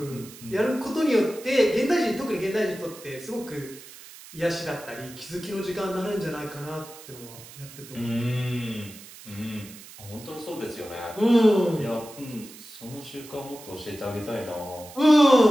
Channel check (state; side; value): noise; right; hiss, 17 dB below the sound